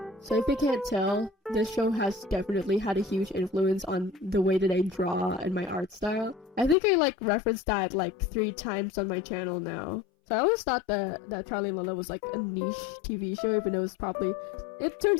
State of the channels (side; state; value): right; drops out; at 6.8 s